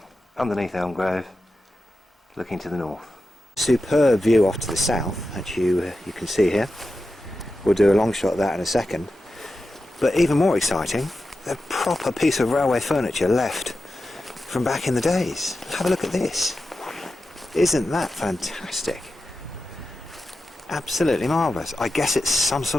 underneath Elm Grove, looking to the north. Superb view off to the south, that you can see here. We'll do a long shot of that in a second. But even more exciting, a proper piece of railway furniture left from back in the days. Have a look at this. Isn't that fantastic? Absolutely marvellous. I guess it's some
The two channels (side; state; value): both; normal; correlation 0.91